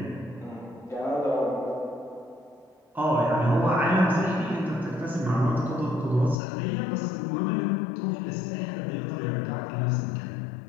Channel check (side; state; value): right; drops out; at 6.4 s